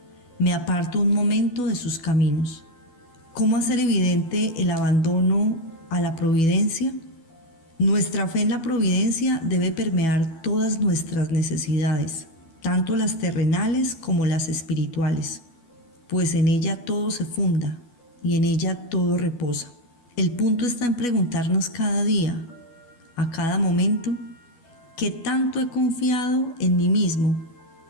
me aparto un momento de sus caminos. ¿Cómo hacer evidente el abandono a la providencia? Nuestra fe en la providencia debe permear todas nuestras necesidades, tanto las terrenales como las espirituales, pues en ella todo se funda y en ella todo reposa. El punto está en preguntarnos cada día, a cada momento, ¿qué tanto he confiado en mí mismo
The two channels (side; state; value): right; late; 12 ms